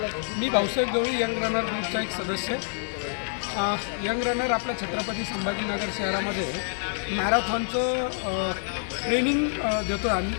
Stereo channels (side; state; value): right; silent; digital silence